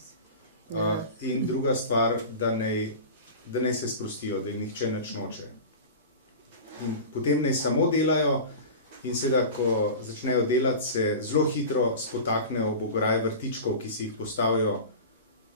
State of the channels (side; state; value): both; inverted; correlation -0.32